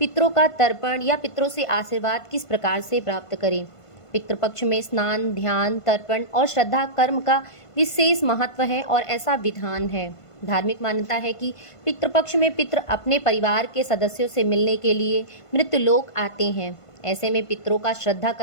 का तर्पण या पितरों से आशीर्वाद किस प्रकार से प्राप्त करें। पितृपक्ष में स्नान, ध्यान, तर्पण और श्रद्धा कर्म का विशेष महत्व है और ऐसा विधान है। धार्मिक मान्यता है कि पितृपक्ष में पितृ अपने परिवार के सदस्यों से मिलने के लिए मृत्युलोक आते हैं। ऐसे में पितरों का श्रद्धा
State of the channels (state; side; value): late; right; 1.5 ms